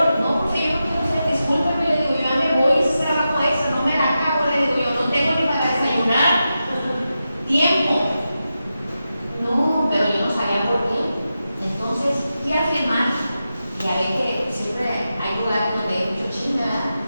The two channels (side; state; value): both; inverted; correlation -0.90